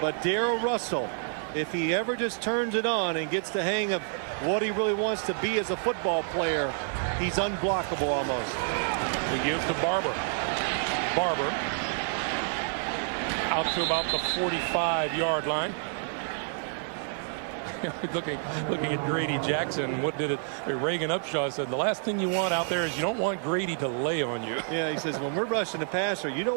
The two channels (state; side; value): silent; left; 59 dB below the other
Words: Darrell Russell, if he ever just turns it on and gets the hang of what he really wants to be as a football player, he's unblockable almost. We give to Barber. Barber out to about the 45-yard line. looking at Grady Jackson. What did it? Reagan Upshaw said the last thing you want out there is you don't want Grady to lay on you. Yeah, he says when we're rushing the passer, you don't